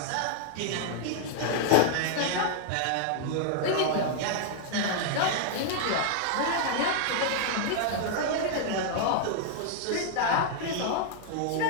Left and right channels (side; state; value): both; different; correlation 0.00